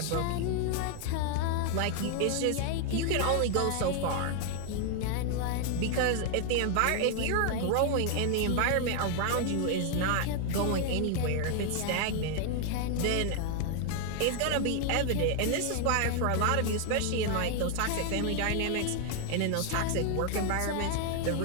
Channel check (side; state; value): both; different; correlation 0.00